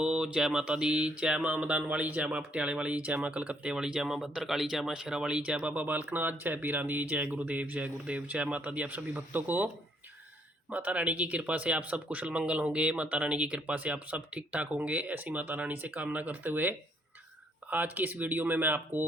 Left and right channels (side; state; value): both; normal; correlation 0.68